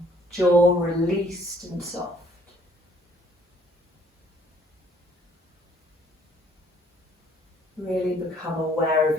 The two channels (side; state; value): both; normal; correlation 0.61